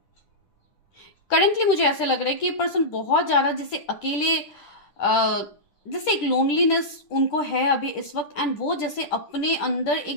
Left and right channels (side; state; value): right; late; 10 ms